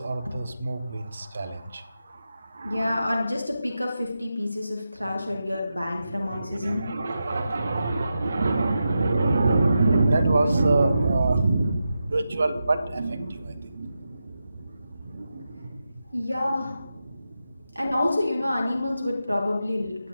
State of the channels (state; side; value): inverted; both; correlation -0.89